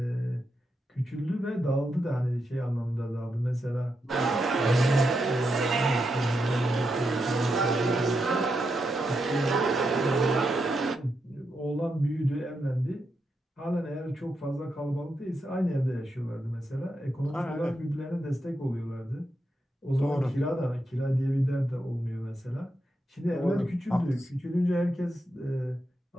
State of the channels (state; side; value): normal; both; correlation 0.84